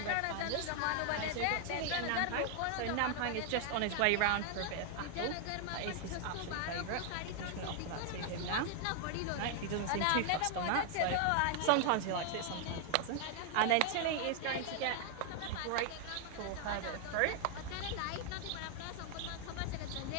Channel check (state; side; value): different; both; correlation 0.00